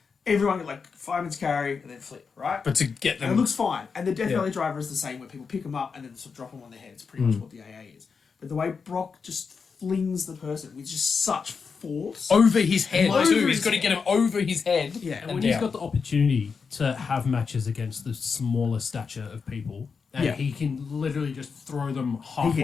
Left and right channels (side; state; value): right; quieter; 5.5 dB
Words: Everyone like fireman's carry and then flip, right? But to get and it them... looks fine. And the Death Yeah. Valley Driver is the same, where people pick them up and then sort of drop them on their head. It's pretty much what the AA is. But the way Brock just flings the person with just such force. over his head Over too. his He's got to head. get him over his head. Yeah. And when he's got the opportunity to have matches against the smaller stature of people, And Yeah. he can literally just throw them